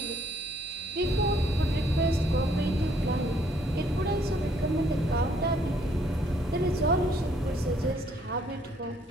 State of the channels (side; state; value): both; normal; correlation 0.66